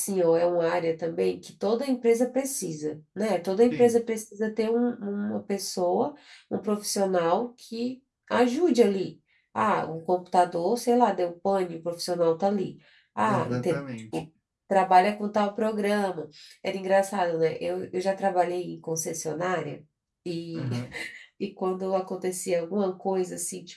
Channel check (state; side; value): identical; both; correlation 1.00